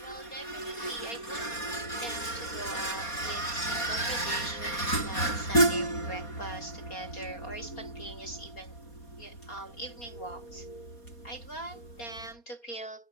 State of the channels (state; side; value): late; right; 4.2 ms